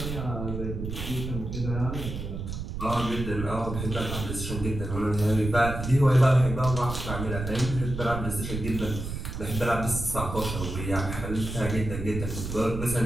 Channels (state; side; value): noise; right; rumble, 6 dB below the sound